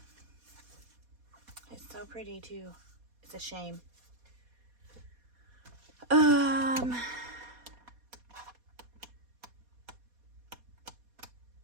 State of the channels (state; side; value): late; left; 4.2 ms